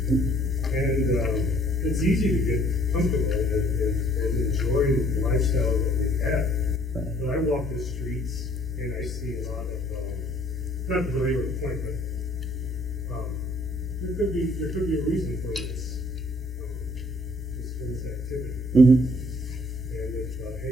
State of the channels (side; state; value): both; normal; correlation 0.61